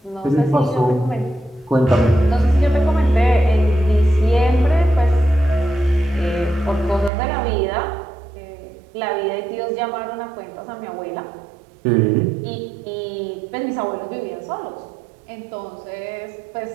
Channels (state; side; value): drops out; left; at 7.1 s